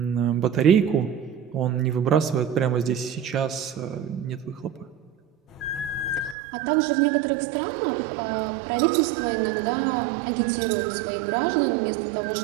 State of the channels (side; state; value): left; drops out; at 6.4 s